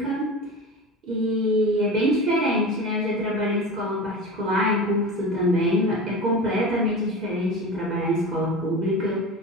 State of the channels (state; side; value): normal; both; correlation 0.30